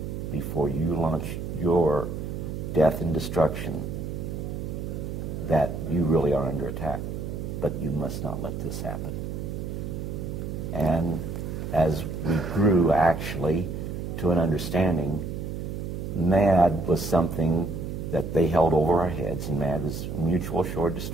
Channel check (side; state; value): right; noise; hum, 5 dB below the sound